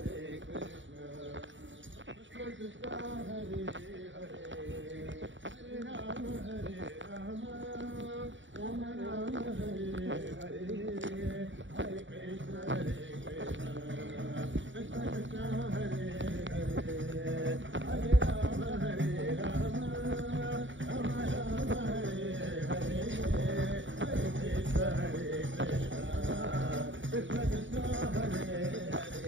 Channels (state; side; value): late; left; 0.55 ms